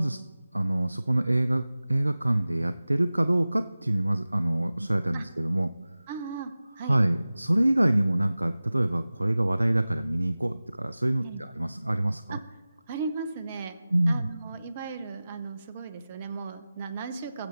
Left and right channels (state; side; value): inverted; both; correlation -0.97